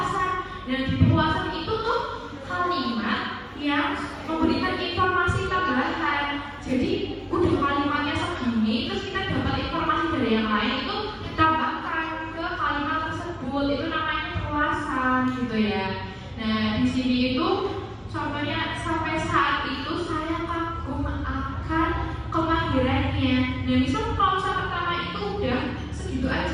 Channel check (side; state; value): both; identical; correlation 1.00